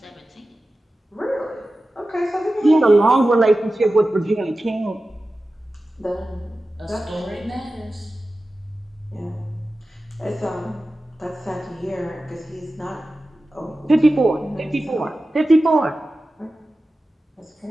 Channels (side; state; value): both; normal; correlation 0.94